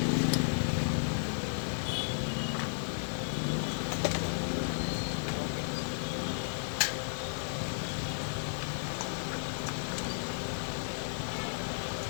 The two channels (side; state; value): right; silent; digital silence